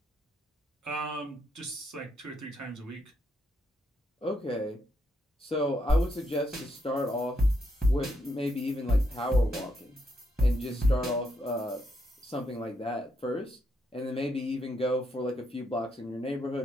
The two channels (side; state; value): both; normal; correlation 0.78